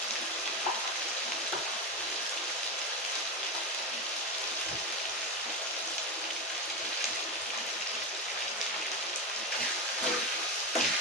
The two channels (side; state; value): both; normal; correlation 0.16